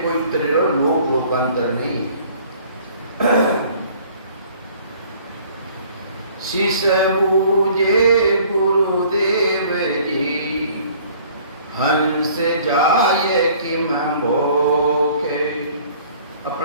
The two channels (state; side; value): inverted; both; correlation -0.54